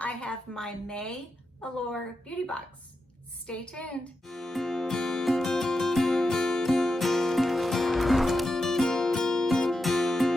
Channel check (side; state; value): both; normal; correlation 0.88